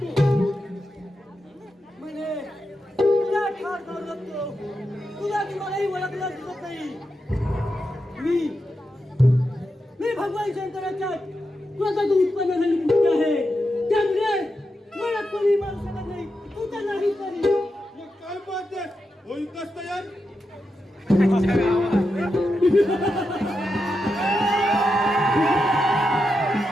म्हणे तुला ठार करू लागतो, तुला की मलाही ओळखला दिसत नाही. मी भगवान शंकराच्या स्वतःच उत्पन्न झालेली मूर्ती आहे, त्यामुळे मला कोणी मारू शकत नाही. तू तर नाही तरी मग काय पाहते, होईल कस तयार?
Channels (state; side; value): normal; both; correlation 0.87